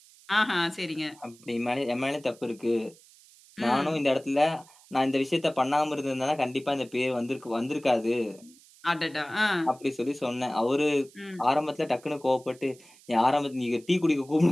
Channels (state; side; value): noise; right; hiss, 25 dB below the sound